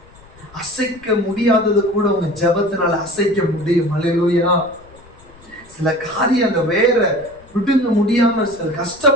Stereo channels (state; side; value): noise; left; rumble, 25 dB below the sound